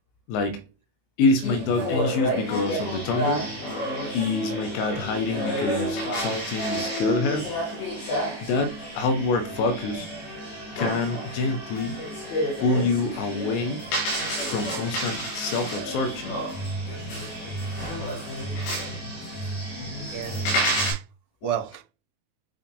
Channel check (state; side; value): late; right; 19 ms